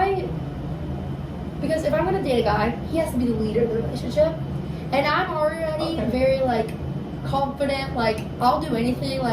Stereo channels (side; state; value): both; identical; correlation 1.00